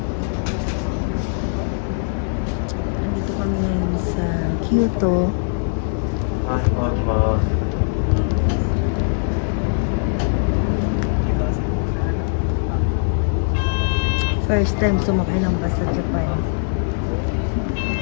Nandito kami ngayon sa Kyoto. First time sumakay ng bus sa Japan.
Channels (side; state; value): right; silent; 56 dB below the other